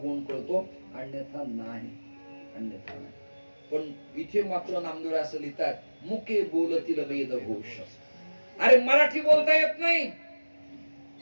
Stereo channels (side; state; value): both; inverted; correlation -1.00